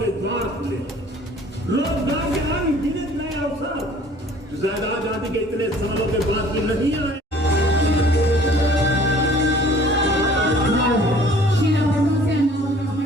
के द्वार खुले, रोजगार के अनगिनत नए अवसर ज्यादा आजादी के इतने सालों के बाद भी नहीं आए।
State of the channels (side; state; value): both; normal; correlation 0.52